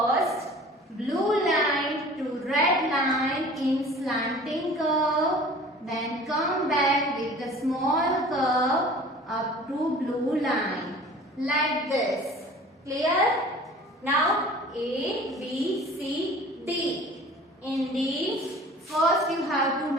blue line to red line in slanting curve, then come back with the small curve up to blue line like this. Clear? Now A, B, C, D. In D, first you have to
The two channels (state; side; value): normal; both; correlation 0.45